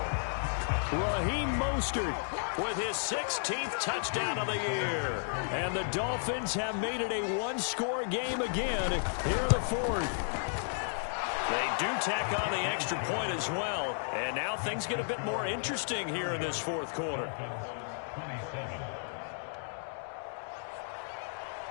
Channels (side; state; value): right; silent; digital silence